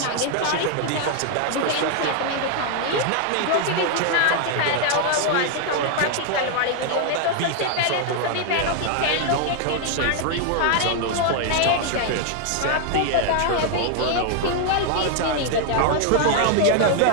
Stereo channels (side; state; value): both; different; correlation 0.00